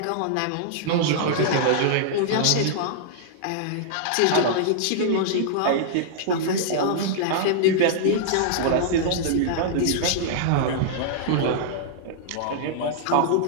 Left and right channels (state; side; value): different; both; correlation -0.01